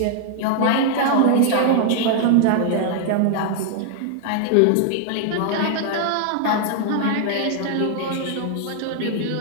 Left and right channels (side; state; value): both; different; correlation 0.00